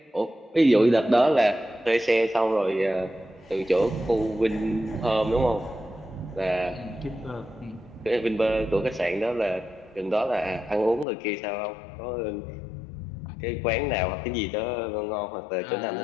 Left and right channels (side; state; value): right; drops out; at 11.1 s